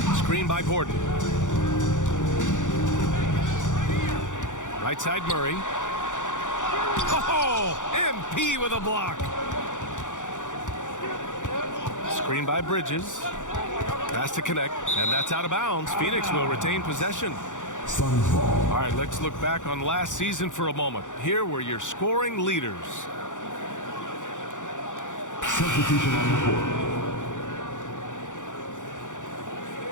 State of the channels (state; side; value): late; right; 0.86 ms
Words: Screen by Gordon. Right side Murray. Oh, MP with a block. Screen by Bridges. Pass to connect, and that's out of bounds. Phoenix will retain possession. All right, let's look back on last season for a moment. Here were your scoring leaders. Substitution on the court.